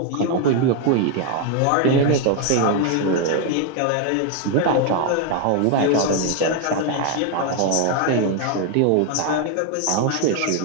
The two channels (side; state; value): both; different; correlation 0.01